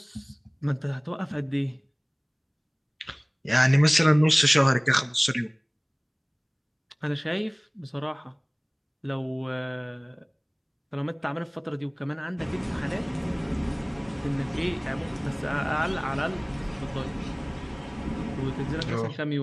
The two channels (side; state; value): both; identical; correlation 1.00